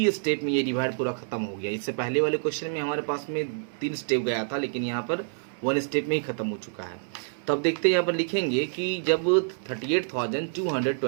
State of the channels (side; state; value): left; silent; 60 dB below the other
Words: स्टेप में ये डिवाइड पूरा खत्म हो गया। इससे पहले वाले क्वेश्चन में हमारे पास में 3 स्टेप गया था, लेकिन यहाँ पर 1 स्टेप में ही खत्म हो चुका है। तो अब देखते हैं यहाँ पर लिखेंगे कि जब